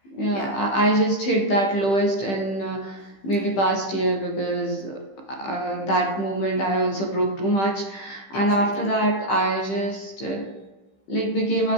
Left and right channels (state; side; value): late; right; 15 ms